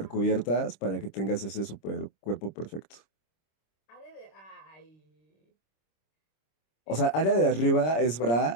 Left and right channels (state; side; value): late; right; 26 ms